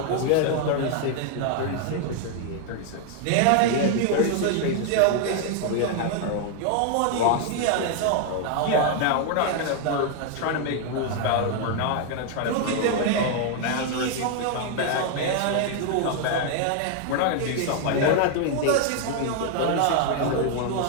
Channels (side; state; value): both; different; correlation 0.00